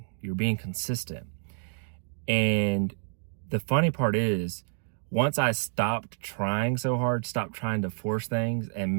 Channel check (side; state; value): left; silent; digital silence